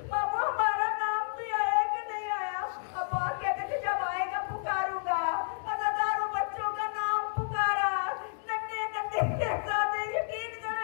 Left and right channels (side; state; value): right; silent; digital silence